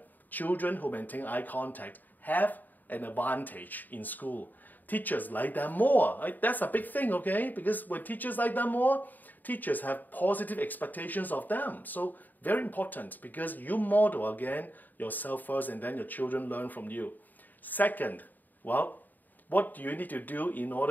children who maintain eye contact have an advantage in school. Teachers like them more. That's a big thing, okay? Because when teachers like them more, teachers have positive expectations of them. So very important, because you model, again, yourself first, and then your children learn from you. Second, well, what do you need to do in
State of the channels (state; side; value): late; right; 0.086 ms